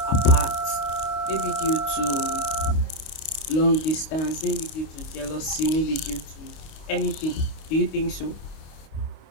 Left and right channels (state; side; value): late; right; 25 ms